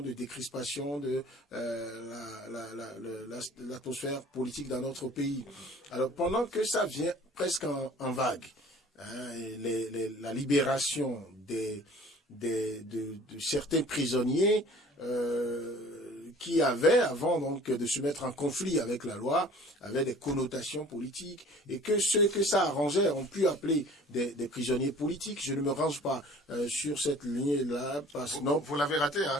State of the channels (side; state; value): both; normal; correlation 0.49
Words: de décrispation de l'atmosphère politique dans notre pays. Alors, pendant que ça vient presque en vague, la libération de certains prisonniers qui avaient, avant donc de se mettre en conflit avec la loi, avaient des connotations politiques, et que ceux que ça arrangeait ont pu appeler des prisonniers politiques. Je ne me range pas sur cette ligne-là, parce que non. Vous l'avez raté, hein,